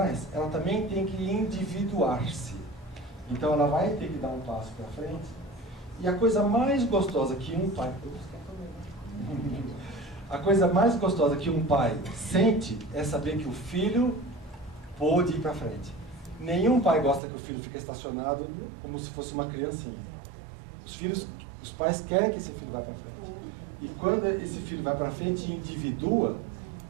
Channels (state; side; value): drops out; left; at 17.2 s